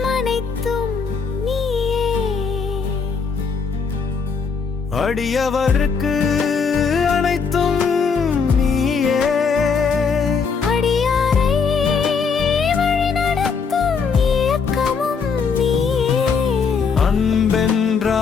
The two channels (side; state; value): right; quieter; 5.5 dB